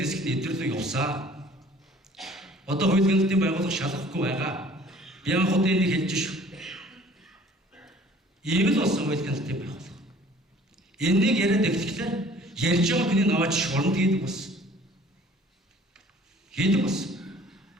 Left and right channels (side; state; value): both; normal; correlation 0.52